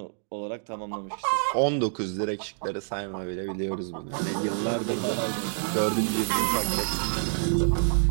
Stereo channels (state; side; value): silent; left; digital silence